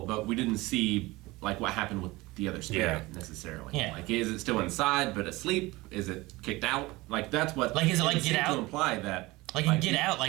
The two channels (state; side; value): quieter; left; 21.1 dB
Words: but we didn't see, like, what happened with the other spirit necessarily. Yeah. Like, is it still inside but asleep? Is it kicked out? Like, that's what. Like, is it like seemed Get to Out? imply that. Like in Get Out,